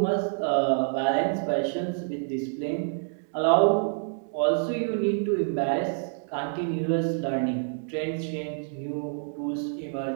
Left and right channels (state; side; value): silent; left; digital silence